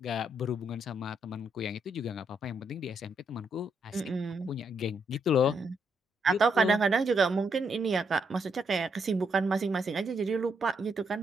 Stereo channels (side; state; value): both; normal; correlation 0.77